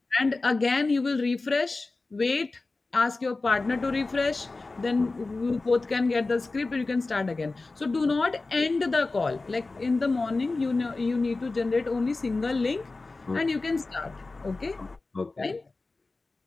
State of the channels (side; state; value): right; quieter; 3.5 dB